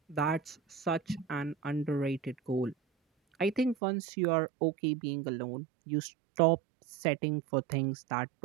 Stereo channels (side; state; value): left; drops out; at 3.8 s